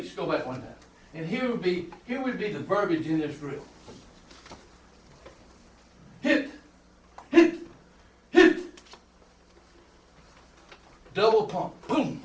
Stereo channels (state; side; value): identical; both; correlation 1.00